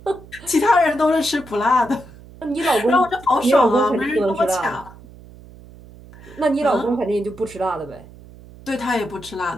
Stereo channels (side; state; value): right; noise; hum, 20 dB below the sound